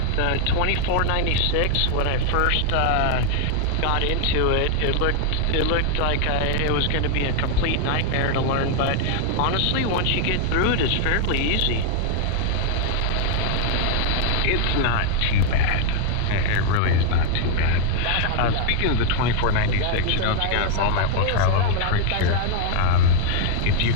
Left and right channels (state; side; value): different; both; correlation 0.00